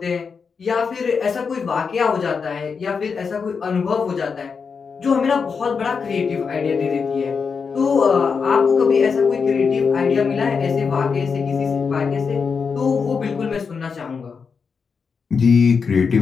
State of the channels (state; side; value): quieter; right; 5.6 dB